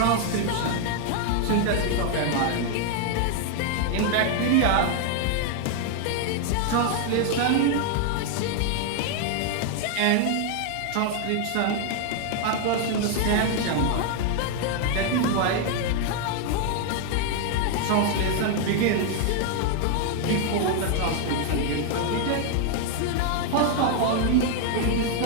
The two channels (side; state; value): both; different; correlation 0.00